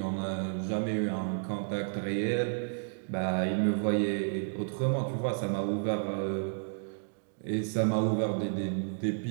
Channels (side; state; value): left; silent; digital silence